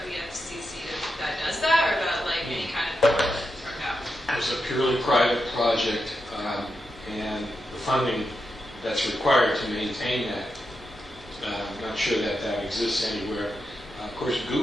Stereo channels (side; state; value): both; normal; correlation 0.86